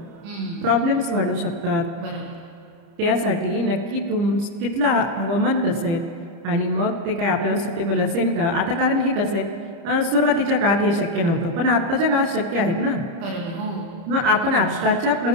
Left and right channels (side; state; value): left; late; 30 ms